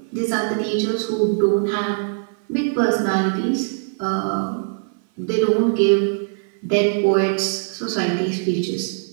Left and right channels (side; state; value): left; silent; 56 dB below the other